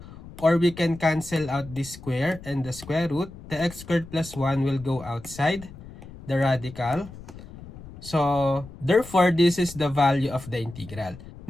or we can cancel out this square and the square root. The x squared plus 1 will go outside the radical. So therefore, this is the value of the integral.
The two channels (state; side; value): noise; left; rumble, 16 dB below the sound